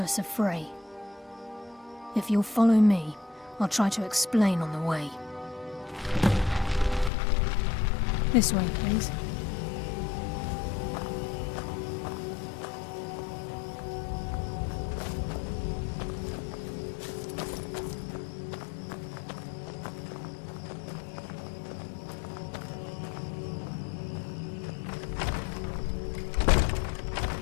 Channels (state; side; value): drops out; right; at 7.1 s